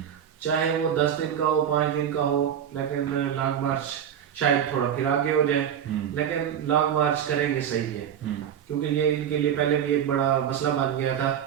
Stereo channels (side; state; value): left; quieter; 9.1 dB